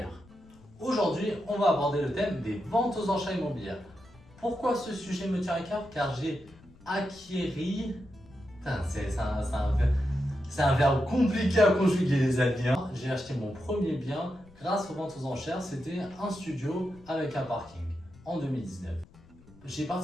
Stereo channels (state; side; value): noise; left; rumble, 25 dB below the sound